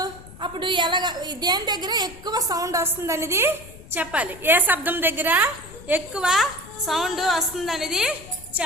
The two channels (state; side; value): noise; left; rumble, 18 dB below the sound